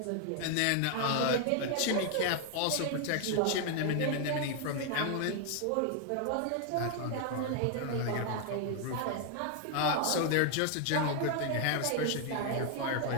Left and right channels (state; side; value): different; both; correlation 0.00